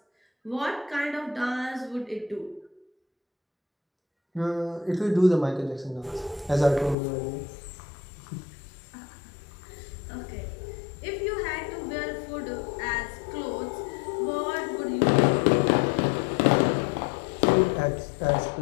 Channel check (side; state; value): right; drops out; at 7.0 s